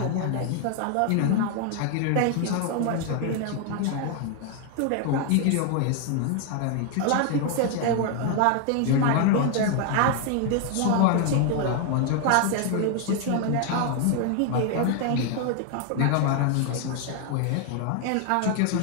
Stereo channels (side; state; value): both; different; correlation 0.00